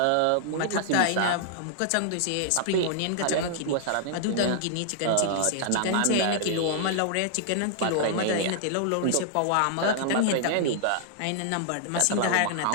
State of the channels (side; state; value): both; different; correlation -0.01